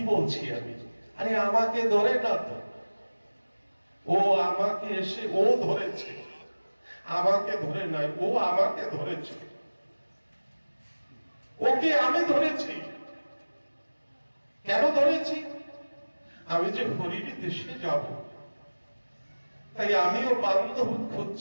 বলছি আমি? আরে আমাকে ধরে না তো, ও আমাকে এসে ও ধরেছে, আমাকে ধরে নয়, ও আমাকে ধরেছে। ওকে আমি ধরেছি। কেন ধরেছি? আমি যে হরির দেশে যাব, তাই আমিও বান্ধব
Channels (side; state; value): both; inverted; correlation -1.00